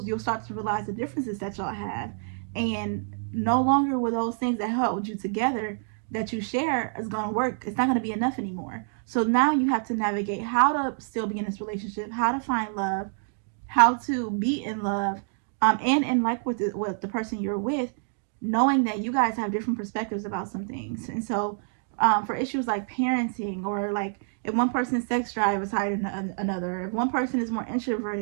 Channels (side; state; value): left; silent; digital silence